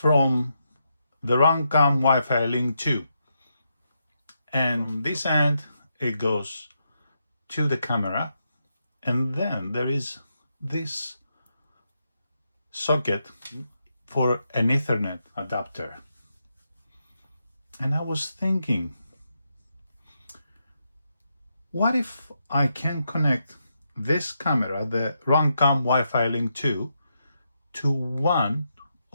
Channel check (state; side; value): inverted; both; correlation -0.83